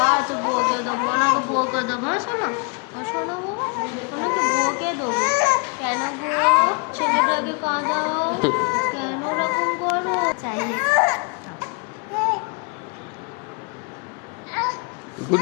আচ্ছা বকে দেবো, ওনাকে বকে দেবো, শোনো শোনো ওনাকে বকে দেবো। কেন গো ছেলেটাকে কাঁদাও, কেন ওরকম করো?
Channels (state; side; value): quieter; right; 35.2 dB